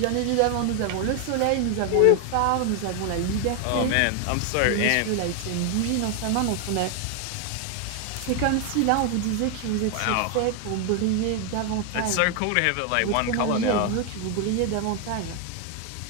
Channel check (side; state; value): both; different; correlation 0.00